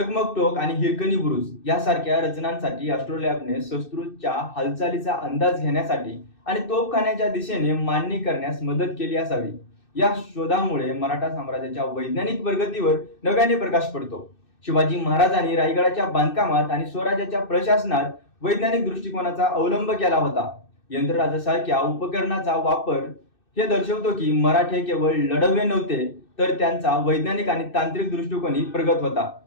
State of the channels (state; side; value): late; right; 2.6 ms